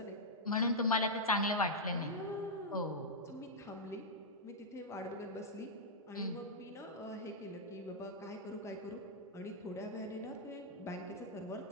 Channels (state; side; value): normal; both; correlation -0.07